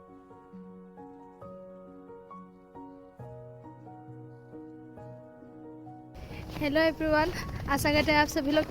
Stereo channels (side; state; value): both; identical; correlation 1.00